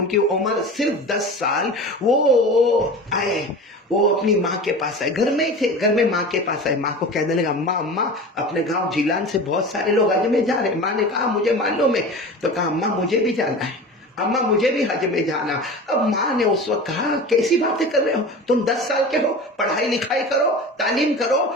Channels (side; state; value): both; normal; correlation 0.33